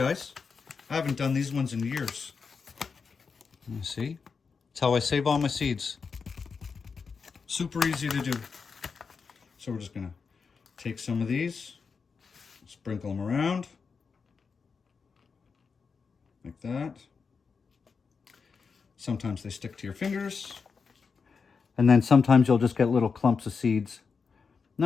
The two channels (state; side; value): quieter; right; 5.3 dB